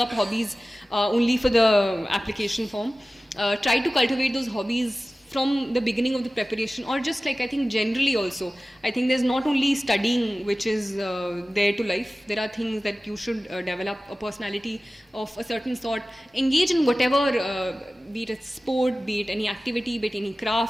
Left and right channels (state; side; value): normal; both; correlation 0.96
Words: hobbies only for the application form. Try to cultivate those hobbies from the beginning of the preparation, or just like I think generally also. I think there's not only studying which is there to life. There are things that you should develop a personality of a certain sort. Engage in whatever, be it a sport, be it any activity, be it any